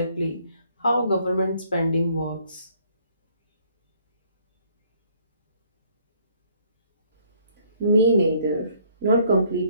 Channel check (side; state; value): both; inverted; correlation -0.63